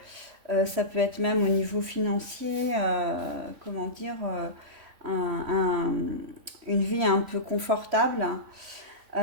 Ça peut être même au niveau financier, comment dire, un- un- une vie un peu confortable.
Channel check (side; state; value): left; late; 3.5 ms